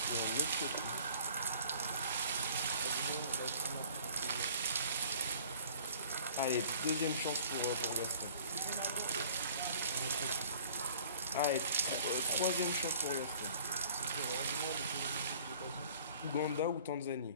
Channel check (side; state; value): both; inverted; correlation -0.51